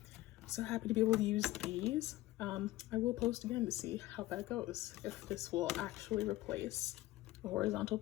happy to be able to use these. I will post again to see how that goes, if this will actually replace a horizontal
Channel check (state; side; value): quieter; right; 17.0 dB